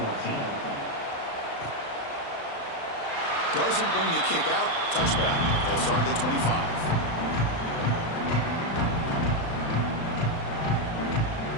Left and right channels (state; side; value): late; right; 36 ms